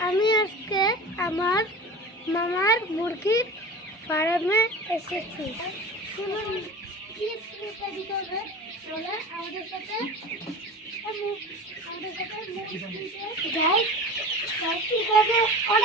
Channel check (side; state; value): both; normal; correlation 0.34